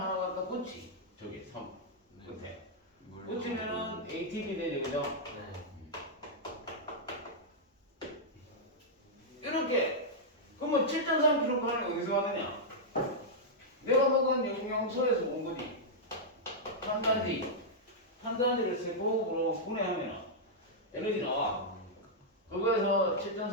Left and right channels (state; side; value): normal; both; correlation -0.07